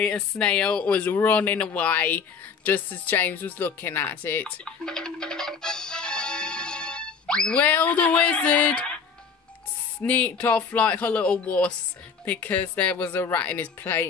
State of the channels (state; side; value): quieter; right; 5.7 dB